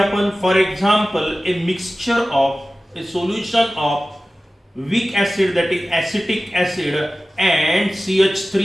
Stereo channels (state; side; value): normal; both; correlation 0.96